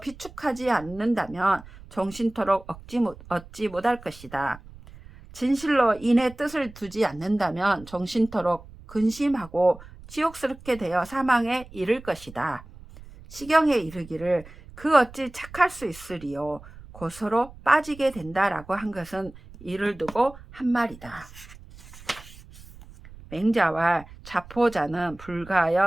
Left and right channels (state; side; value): noise; right; rumble, 19 dB below the sound